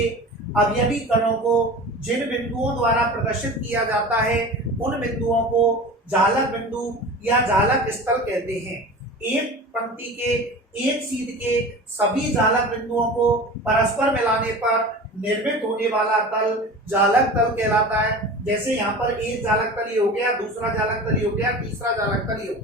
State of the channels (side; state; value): both; normal; correlation 0.35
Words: अवयवी कणों को जिन बिंदुओं द्वारा प्रदर्शित किया जाता है, उन बिंदुओं को जालक बिंदु या जालक स्थल कहते हैं। एक पंक्ति के एक सीध के सभी जालक बिंदुओं को परस्पर मिलाने पर निर्मित होने वाला तल जालक तल कहलाता है। जैसे यहाँ पर एक जालक तल ये हो गया, दूसरा जालक तल ये हो गया, तीसरा जालक तल ये हो